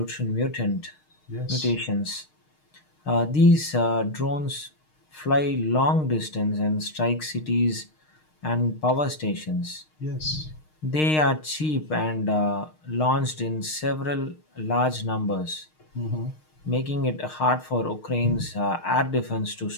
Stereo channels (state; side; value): late; right; 6.5 ms